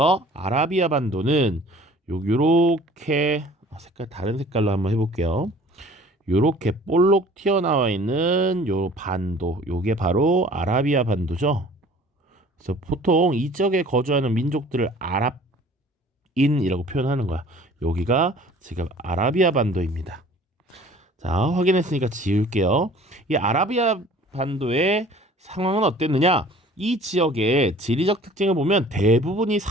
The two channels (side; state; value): both; normal; correlation 0.49